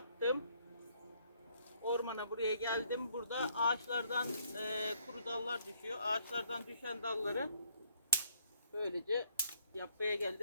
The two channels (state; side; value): inverted; both; correlation -0.68